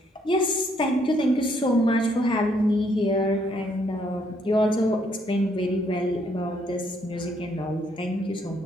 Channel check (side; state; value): both; normal; correlation 0.70